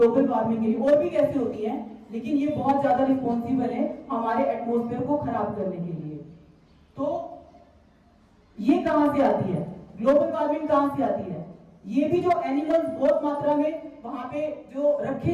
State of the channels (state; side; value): identical; both; correlation 1.00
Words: वार्मिंग के लिए, और भी कैसे होती है, लेकिन ये बहुत ज्यादा रिस्पॉन्सिबल है हमारे एटमॉस्फेयर को खराब करने के लिए। तो ये कहां से आती है? ग्लोबल वार्मिंग कहां से आती है? ये भी जो एनिमल्स बहुत मात्रा में वहां पे जो